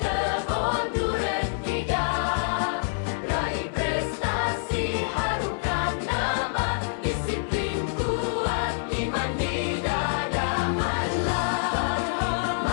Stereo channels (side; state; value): right; silent; 61 dB below the other